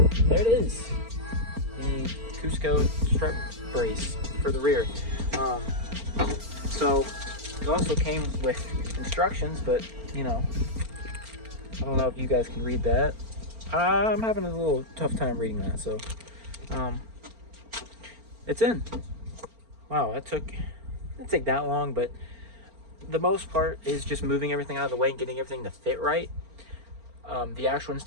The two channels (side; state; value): left; late; 4.4 ms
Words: it is, the Cusco strut brace for the rear. So It also came with instructions, but you know, I don't know if you guys can read that. I'm having a little tough time reading that, so it's in. Wow, it didn't take that long, but the most part is just moving everything out of the way and getting everything to fit right. The actual